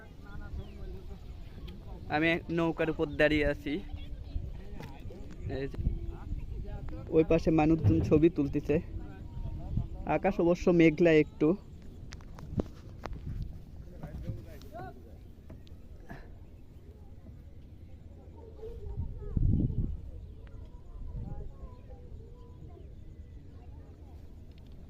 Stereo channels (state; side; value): identical; both; correlation 1.00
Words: আমি নৌকার উপর দাঁড়িয়ে আছি। ওই পাশে মানুষজন ছবি তুলতেছে। আকাশ অবশ্য মেঘলা একটু।